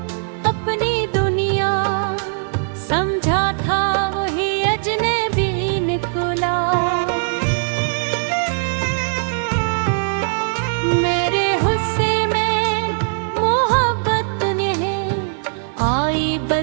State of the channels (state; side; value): silent; left; 64 dB below the other